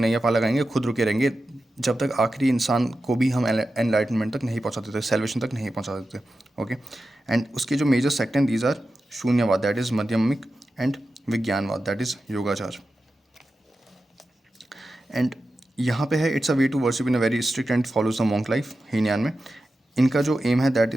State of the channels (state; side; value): normal; both; correlation 0.92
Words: पार लगाएंगे, खुद रुके रहेंगे जब तक आखिरी इंसान को भी हम एनलाइटनमेंट तक नहीं पहुंचा देते, सेल्वेशन तक नहीं पहुंचा देते. ओके. एंड उसके जो मेजर सेक्ट हैं these are Shunyavada, that is Madhyamika, and Vijnanavada, that is Yogachara. And यहाँ पे है it's a way to worship in a very strict and follows the monk life. Hinayana में इनका जो एम है that